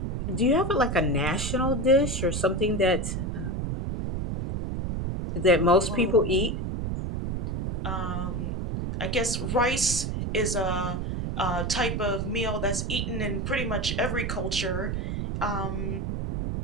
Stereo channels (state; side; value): noise; right; rumble, 2 dB below the sound